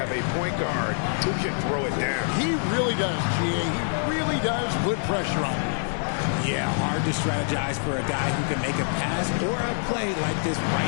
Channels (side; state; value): right; silent; 61 dB below the other